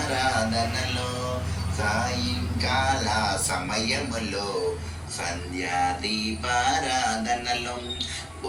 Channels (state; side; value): identical; both; correlation 1.00